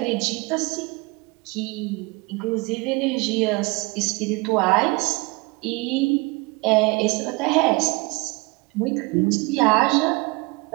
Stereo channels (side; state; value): left; quieter; 26.2 dB